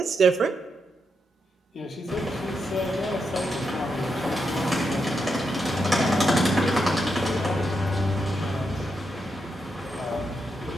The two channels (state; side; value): normal; both; correlation 0.83